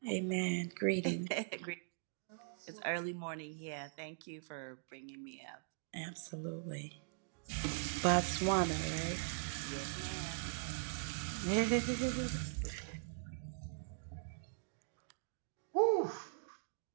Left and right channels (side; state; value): left; silent; digital silence